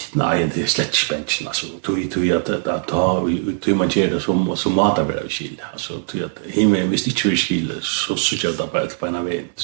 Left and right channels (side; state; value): left; silent; digital silence